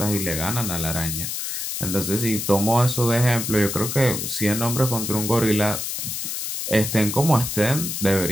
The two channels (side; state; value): left; noise; hiss, 4 dB below the sound